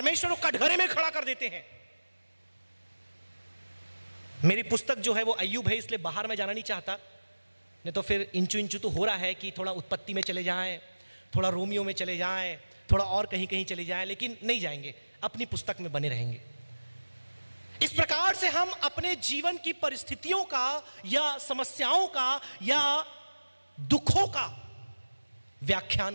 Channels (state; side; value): inverted; both; correlation -1.00